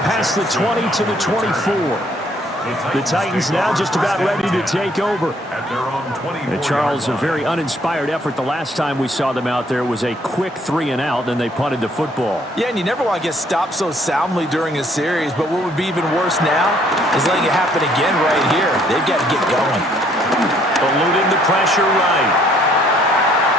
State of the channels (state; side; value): normal; both; correlation 0.64